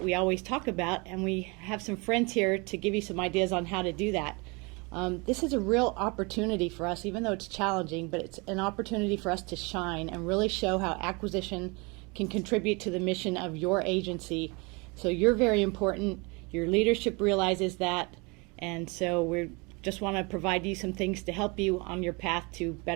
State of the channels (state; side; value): quieter; left; 28.7 dB